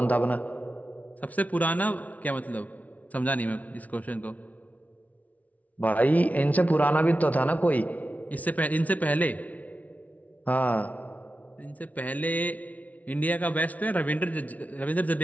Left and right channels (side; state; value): right; late; 0.071 ms